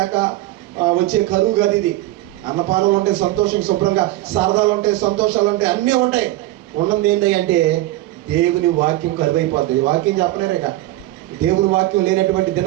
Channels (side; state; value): left; quieter; 16.5 dB